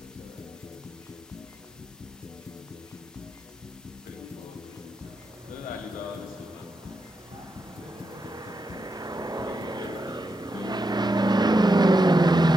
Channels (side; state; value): both; normal; correlation 0.85